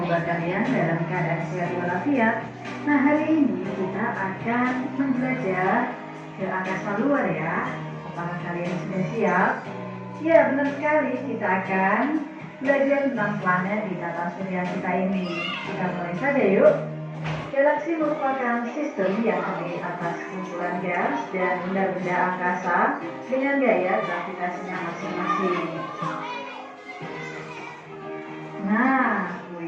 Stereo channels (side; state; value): both; identical; correlation 1.00